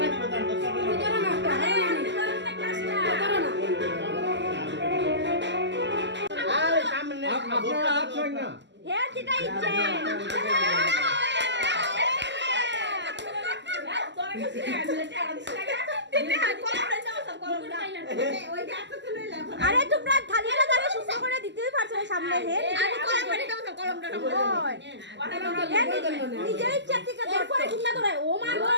আপনারা হাত ছয় না। হ্যাঁ যেটা ইচ্ছে। আরে তোমরা থালিয়াটা ধরে সুন্দর করে দিতেই পারছো না সামনে। হে কলমটা নিজের ইচ্ছা থেকে এরপরে কিনা ধরে। ও মা গো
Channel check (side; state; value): left; late; 0.52 ms